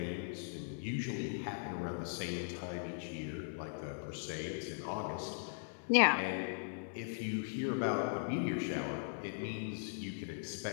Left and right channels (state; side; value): silent; right; 52 dB below the other